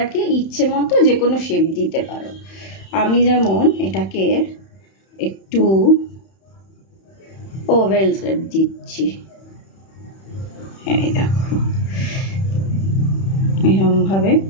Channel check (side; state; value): right; late; 31 ms